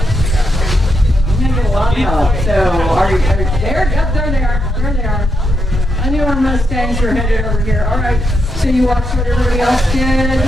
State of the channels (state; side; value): normal; both; correlation 0.82